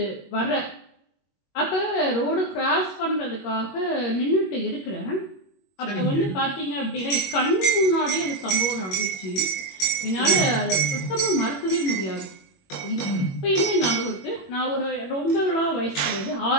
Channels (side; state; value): right; late; 21 ms